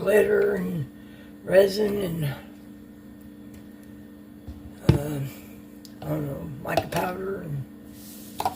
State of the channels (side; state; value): both; identical; correlation 1.00